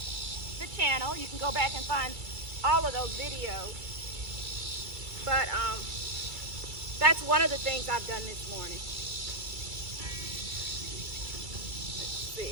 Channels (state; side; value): late; left; 2.3 ms